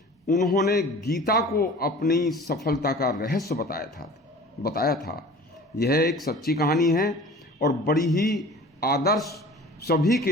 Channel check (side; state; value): both; normal; correlation 0.43